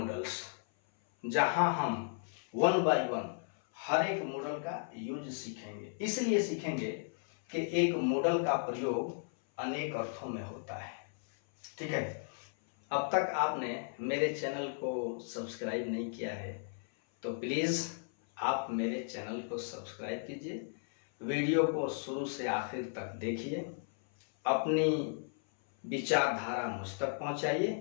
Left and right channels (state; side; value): silent; right; 54 dB below the other